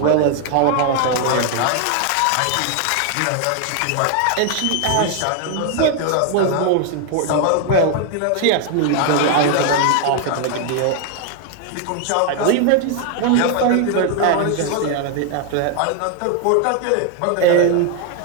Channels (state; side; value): different; both; correlation 0.00